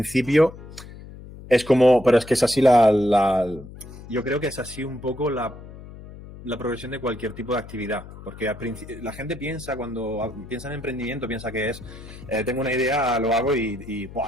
es como, pero es que es así yo creo que es así un poco la progresión de cualquier tipo de actividad, porque la gente piensa, cuando piensa en emprendimiento, piensa que es, tengo una idea, lo hago y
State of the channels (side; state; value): left; noise; hum, 16 dB below the sound